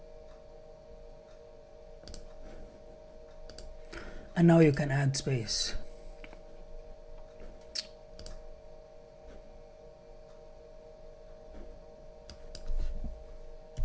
And now you can add space.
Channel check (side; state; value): both; identical; correlation 1.00